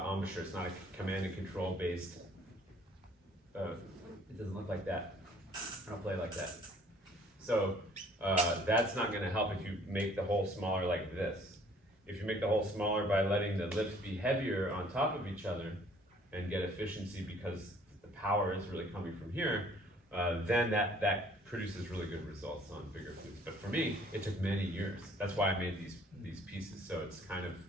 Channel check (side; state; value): both; normal; correlation 0.57